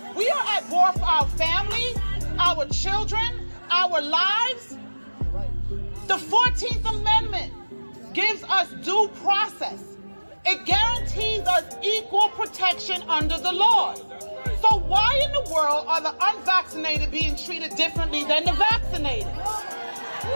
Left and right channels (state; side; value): inverted; both; correlation -1.00